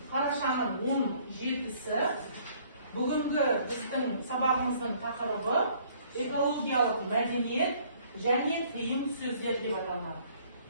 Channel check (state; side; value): inverted; both; correlation -0.60